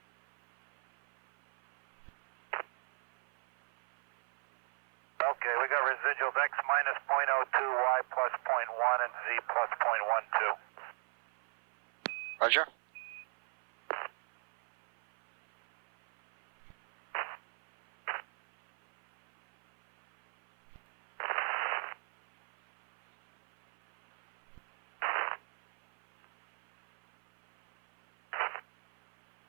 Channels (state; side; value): silent; left; 54 dB below the other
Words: Okay, we got residuals X minus 0.02, Y plus 0.1, and Z plus 0.12. Roger.